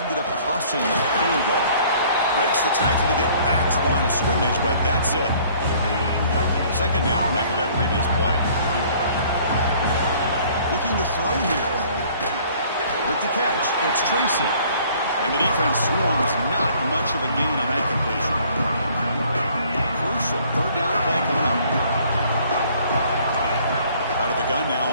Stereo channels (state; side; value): inverted; both; correlation -0.56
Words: up costing them a field goal. Breaks the tackle to get back to the line of scrimmage, but that's it. 2nd down after that previous play. Looking to throw here. With the catch, it's Tracy. And the defense swarms. Not much of a gain on that completion. Crucial 3rd down play coming up. Out of the gun now